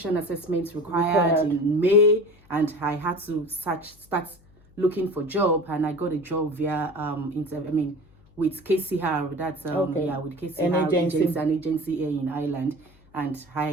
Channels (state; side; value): noise; left; hum, 28 dB below the sound